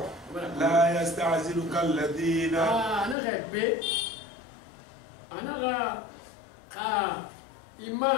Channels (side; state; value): right; drops out; at 3.2 s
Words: لا يستعجلك الذين أنا غير أنا